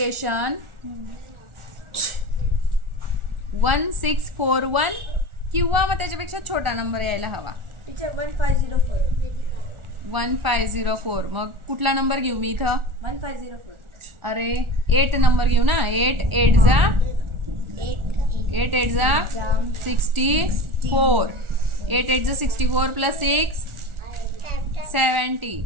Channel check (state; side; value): late; left; 1.4 ms